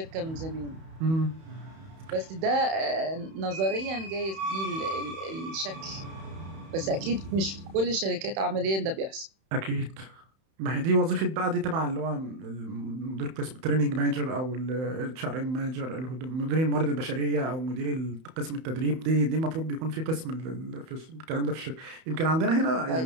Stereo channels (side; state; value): left; late; 31 ms